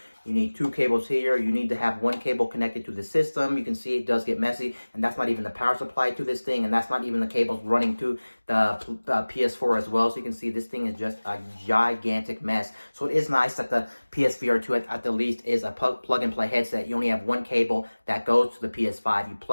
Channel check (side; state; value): both; inverted; correlation -1.00